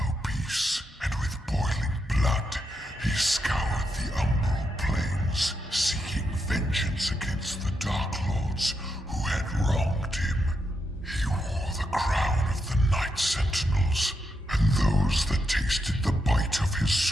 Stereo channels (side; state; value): both; normal; correlation 0.83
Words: peace, and with boiling blood, he scoured the umbral plains, seeking vengeance against the Dark Lords who had wronged him. He wore the crown of the Night Sentinels, and those that tasted the bite of his